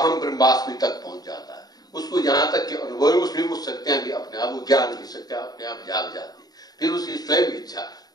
ब्रह्मास्मि तक पहुंच जाता है। उसको जहां तक के अनुभव, उसमें वो शक्तियां भी अपने आप, वो ज्ञान की शक्तियां अपने आप जाग जाती है। फिर उसकी स्वयं इच्छा,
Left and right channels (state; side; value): late; right; 0.19 ms